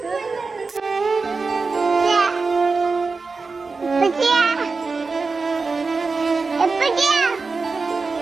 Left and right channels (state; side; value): quieter; left; 4.3 dB